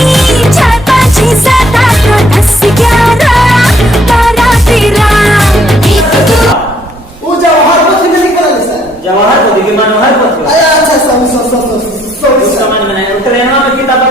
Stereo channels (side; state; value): both; normal; correlation 0.66